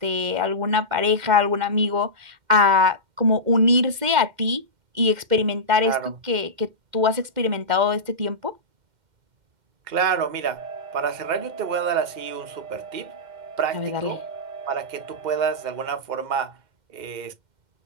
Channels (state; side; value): late; left; 2.1 ms